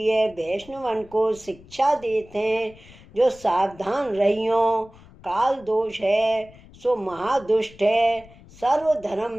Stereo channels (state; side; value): noise; left; rumble, 23 dB below the sound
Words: वैष्णवन को शिक्षा देते हैं। जो सावधान रहियो। काल दोष है सो महादुष्ट है, सर्व धर्म